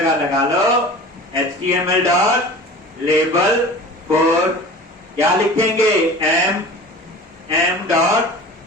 लगा लो HTML डॉट लेबल फॉर, क्या लिखेंगे, m डॉट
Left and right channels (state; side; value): normal; both; correlation 0.39